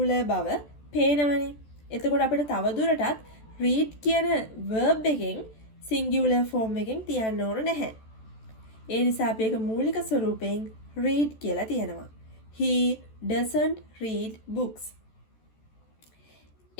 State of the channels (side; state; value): right; late; 14 ms